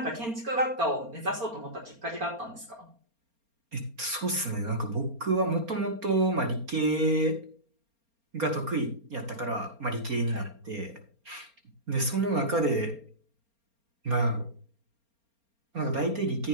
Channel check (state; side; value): late; left; 4.3 ms